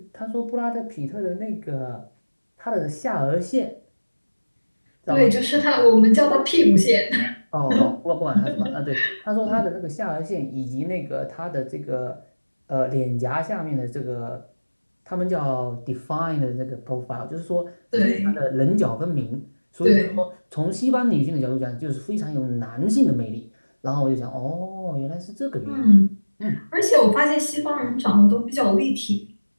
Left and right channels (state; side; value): inverted; both; correlation -1.00